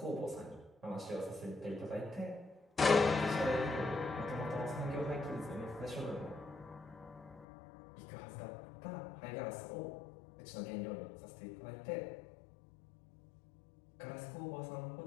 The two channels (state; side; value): drops out; right; at 7.5 s